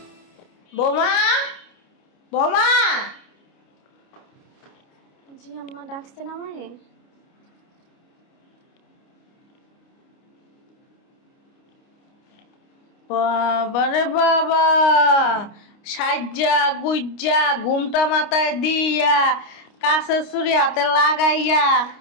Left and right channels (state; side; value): late; right; 29 ms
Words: বোমা বোমা জি আম্মা ডাকছেন আমারে বাবারে বাবা সাজ্জা গুজ্জা ঘুমটা মাথায় দিয়া কাছে ছুরি হাতে লাগাইয়া